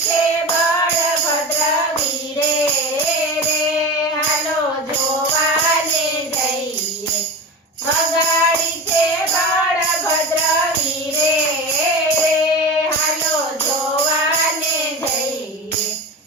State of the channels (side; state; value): both; normal; correlation 0.27